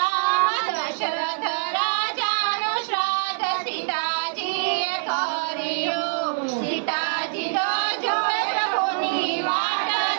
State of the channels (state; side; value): silent; left; 62 dB below the other